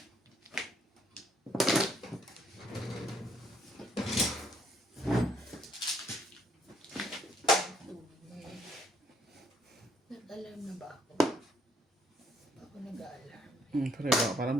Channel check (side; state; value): both; normal; correlation 0.68